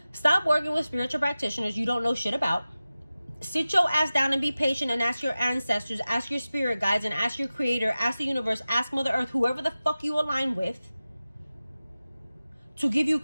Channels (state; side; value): inverted; both; correlation -0.95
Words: Stop working with spiritual practitioners you don't know shit about. Sit your ass down and be patient and ask your ancestors, ask your spirit guides, and ask your creator, ask the universe, ask Mother Earth, whoever the fuck you align with, to give you